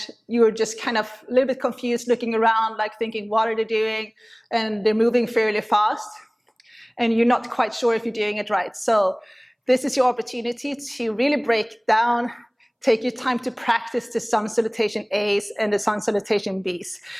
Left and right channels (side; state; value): both; identical; correlation 1.00